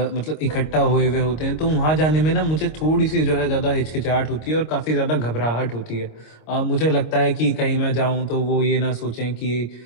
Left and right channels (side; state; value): right; late; 26 ms